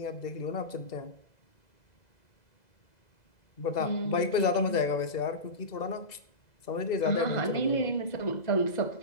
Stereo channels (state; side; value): late; right; 2.0 ms